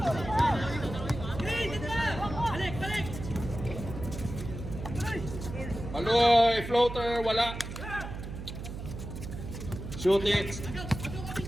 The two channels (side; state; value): right; noise; hum, 8 dB below the sound